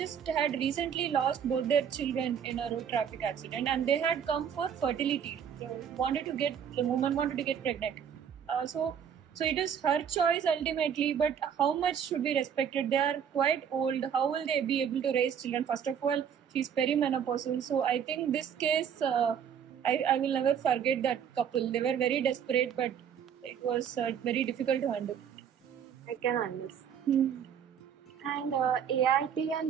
had recently lost both their children in a road traffic accident, and they had come for fertility. The woman wanted to get pregnant. So it is her choice ultimately, but how much should be respected? They are quite old. How will they be able to raise children? First of all, she's perimenopausal. So I think this case, I will never forget that couple. They were very desperate, but it was very difficult to handle. I can understand. And ART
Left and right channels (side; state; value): left; quieter; 8.1 dB